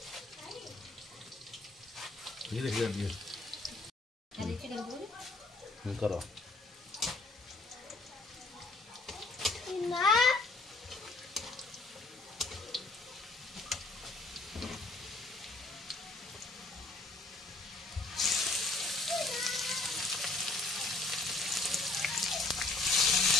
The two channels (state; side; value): quieter; right; 3.2 dB